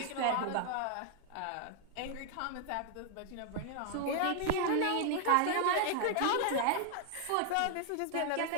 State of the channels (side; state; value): both; different; correlation 0.00